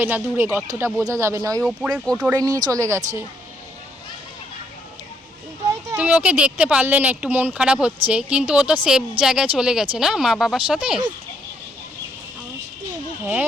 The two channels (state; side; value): normal; both; correlation 0.72